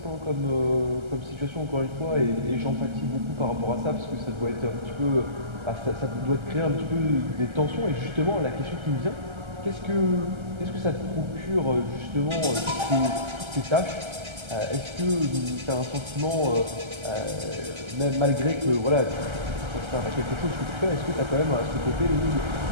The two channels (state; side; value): late; left; 1.3 ms